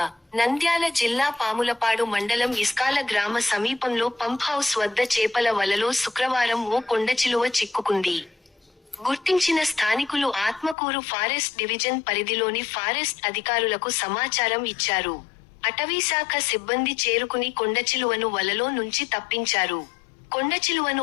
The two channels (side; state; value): right; drops out; at 10.8 s